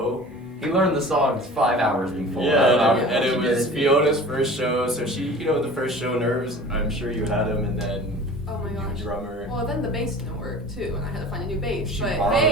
He learned the songs 5 hours before. Yeah, and it was Fiona's first show, so she, the first show nerves, I'm sure you had him, and then Oh my gosh. drummer. Well, then the bass didn't work too, and I had to find a new bass. She But borrowed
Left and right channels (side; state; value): both; normal; correlation 0.41